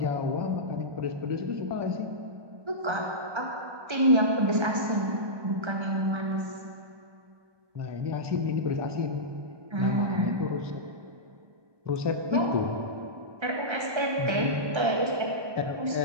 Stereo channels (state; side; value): late; left; 1.2 ms